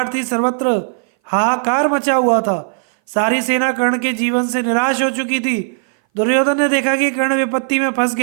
थी, सर्वत्र हाहाकार मचा हुआ था। सारी सेना कर्ण के जीवन से निराश हो चुकी थी। दुर्योधन ने देखा कि कर्ण विपत्ति में फंस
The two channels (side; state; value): left; silent; 60 dB below the other